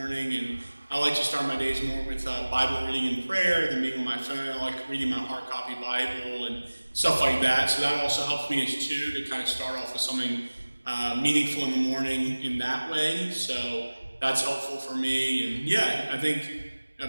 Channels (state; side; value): inverted; both; correlation -1.00